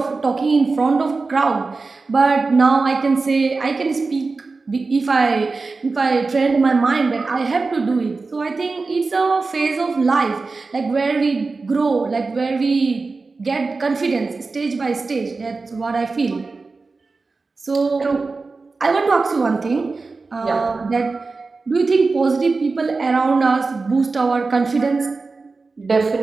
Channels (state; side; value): quieter; left; 4.0 dB